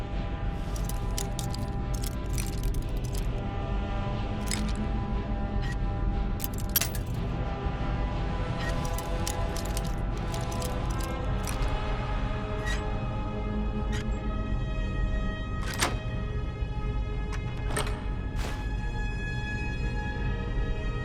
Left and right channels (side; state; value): both; identical; correlation 1.00